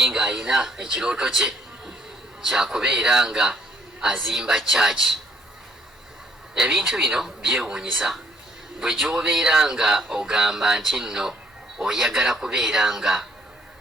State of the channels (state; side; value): normal; both; correlation 0.64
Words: nga ayina ekirooto kye kyakubeera nga azimba church. Ebintu bino byewuunyisa bwe gy'obeera nga ogamba nti nno oyagala kubeera nga